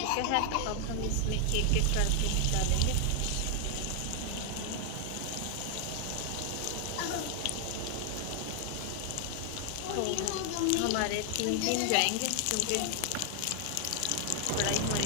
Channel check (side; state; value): both; different; correlation 0.00